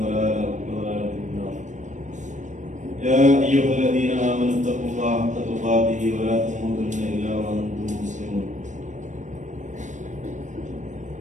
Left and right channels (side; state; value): left; late; 0.35 ms